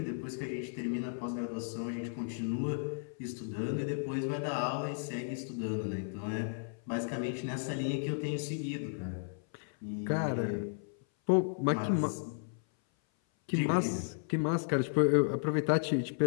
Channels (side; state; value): right; silent; 55 dB below the other